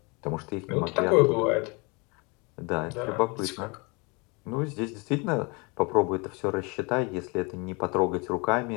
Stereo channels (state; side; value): quieter; right; 29.4 dB